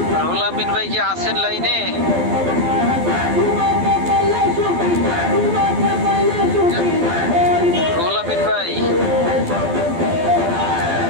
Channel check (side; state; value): left; late; 12 ms